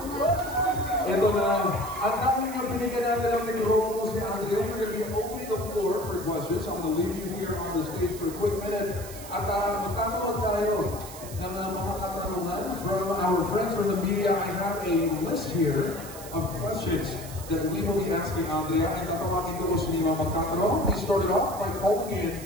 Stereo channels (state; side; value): noise; right; hiss, 14 dB below the sound